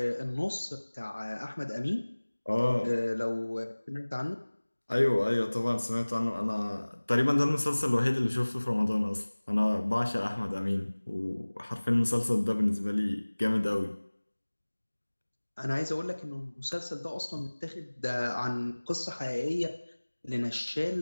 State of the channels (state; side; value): inverted; both; correlation -1.00